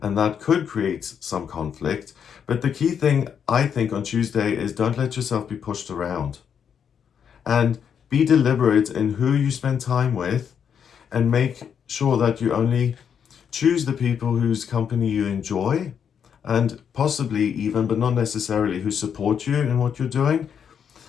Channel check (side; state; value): right; quieter; 7.7 dB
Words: and that could create some conflict. But the key thing, I think, on Tuesday is don't let yourself be pushed around. And be deliberate in who you spend time with, and make sure that you only choose the people whose company you enjoy, and possibly even, but not necessarily, who support you in what you're doing.